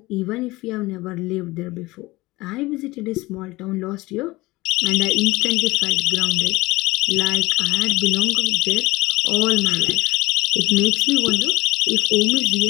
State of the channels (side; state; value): right; quieter; 20.5 dB